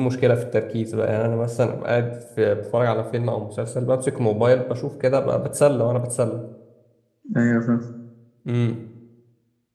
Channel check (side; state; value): both; identical; correlation 1.00